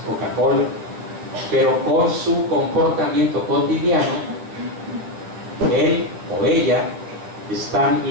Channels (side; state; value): left; late; 10 ms